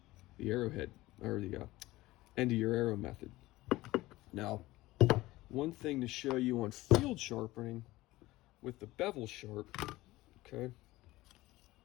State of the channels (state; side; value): quieter; right; 18.3 dB